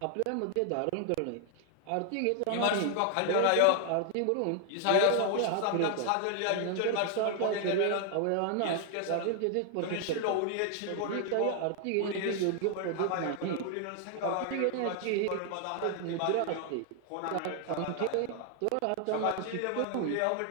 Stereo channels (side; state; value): both; different; correlation 0.00